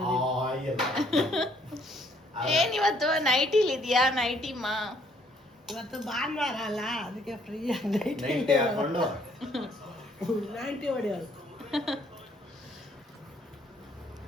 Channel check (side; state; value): both; normal; correlation 0.65